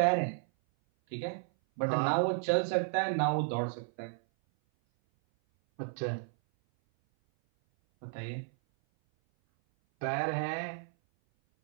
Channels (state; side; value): silent; left; 56 dB below the other